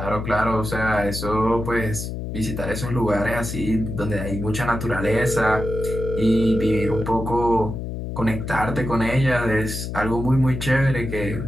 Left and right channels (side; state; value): left; noise; hum, 6 dB below the sound